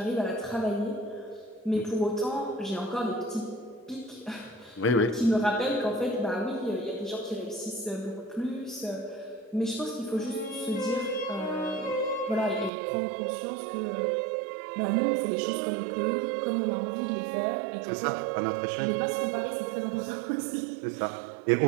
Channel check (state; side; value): drops out; left; at 12.7 s